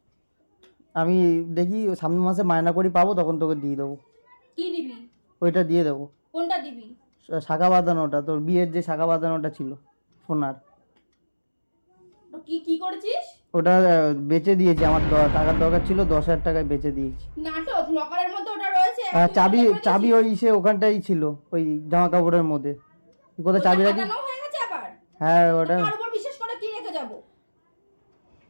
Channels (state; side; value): inverted; both; correlation -1.00